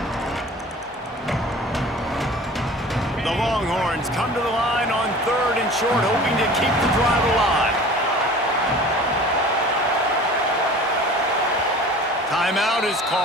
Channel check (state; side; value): normal; both; correlation 0.42